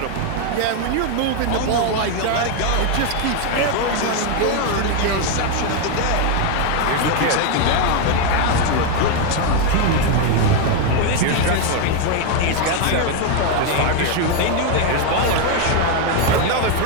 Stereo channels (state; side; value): different; both; correlation 0.01